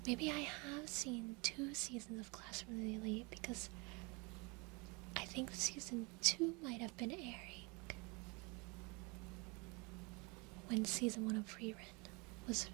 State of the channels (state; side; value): quieter; left; 29.0 dB